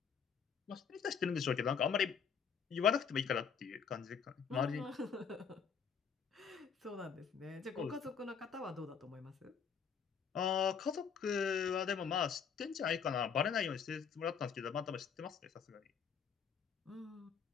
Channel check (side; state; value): right; quieter; 6.8 dB